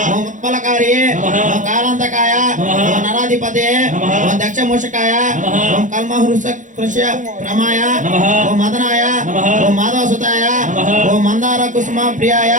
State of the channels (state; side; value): late; left; 0.37 ms